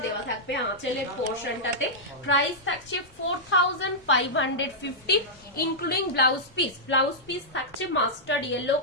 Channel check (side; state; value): both; normal; correlation -0.10